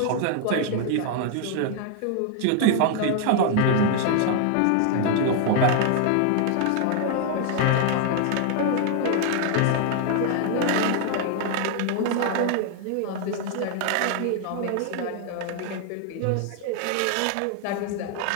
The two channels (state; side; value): different; both; correlation 0.00